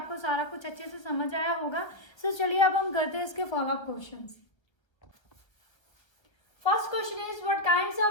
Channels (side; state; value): right; late; 1.1 ms